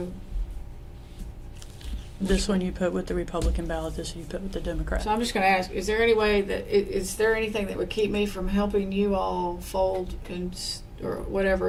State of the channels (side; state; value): both; identical; correlation 1.00